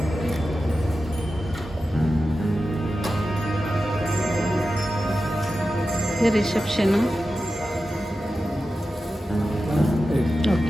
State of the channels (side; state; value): both; normal; correlation 0.92